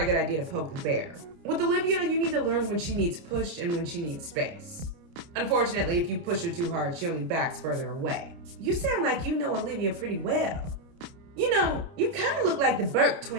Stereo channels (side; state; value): left; late; 29 ms